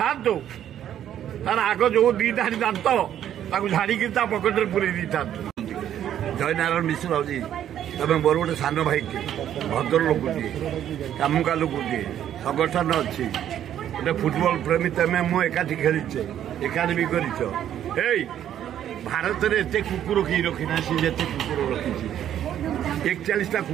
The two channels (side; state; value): left; quieter; 10.6 dB